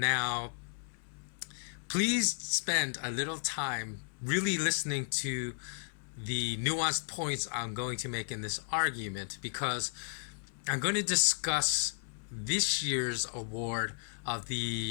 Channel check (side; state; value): right; silent; 55 dB below the other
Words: please spend a little time really listening to the nuanced points I'm going to make in this argument, because I'm going to discuss this year's award of